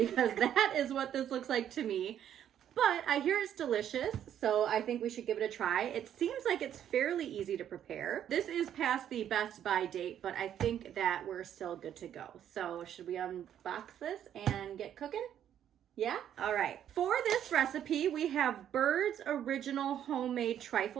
that is what this looks like to me. But I hear it's delicious, so I think we should give it a try. It seems like it's fairly easy to prepare. This is past the best by date, but I think that we're still good to go. So should we unbox this and get cooking? Yeah? All right. For this recipe, we have Bird's Original Homemade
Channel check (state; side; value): quieter; left; 10.1 dB